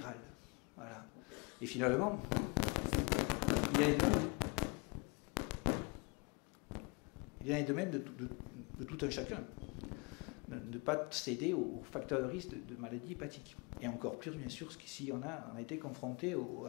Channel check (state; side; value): quieter; right; 30.4 dB